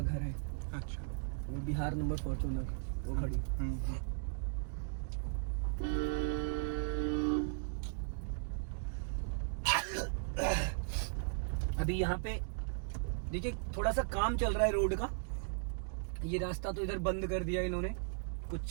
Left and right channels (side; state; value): left; silent; digital silence